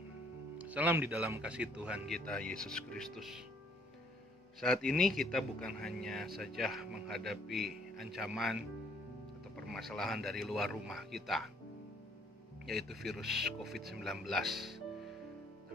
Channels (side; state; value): both; normal; correlation 0.63